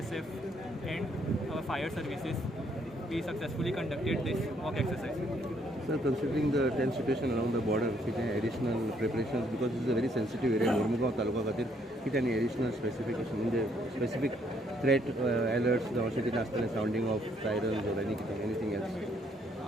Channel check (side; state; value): both; normal; correlation 0.69